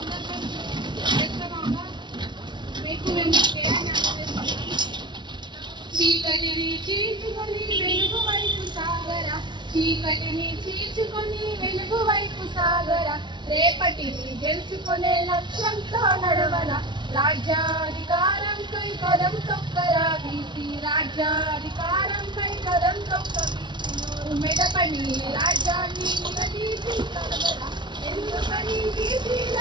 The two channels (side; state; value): left; late; 0.22 ms